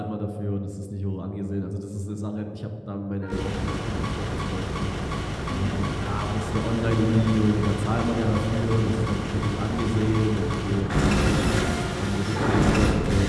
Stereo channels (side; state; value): both; identical; correlation 1.00